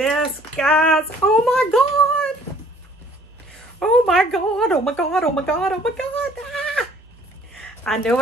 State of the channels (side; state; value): both; normal; correlation 0.57